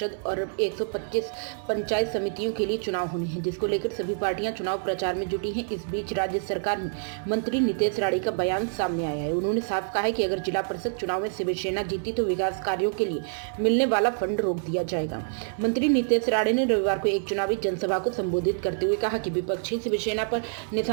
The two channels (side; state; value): left; silent; digital silence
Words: और 125 पंचायत समितियों के लिए चुनाव होने हैं, जिसको लेकर सभी पार्टियां चुनाव प्रचार में जुटी हैं। इस बीच राज्य सरकार में मंत्री नितेश राणे का बयान सामने आया है। उन्होंने साफ कहा है कि अगर जिला परिषद चुनाव में शिवसेना जीती तो विकास कार्यों के लिए मिलने वाला फंड रोक दिया जाएगा। मंत्री नितेश राणे ने रविवार को एक चुनावी जनसभा को संबोधित करते हुए कहा कि विपक्षी शिवसेना पर